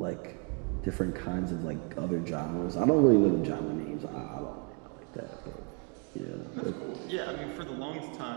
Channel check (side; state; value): left; quieter; 33.2 dB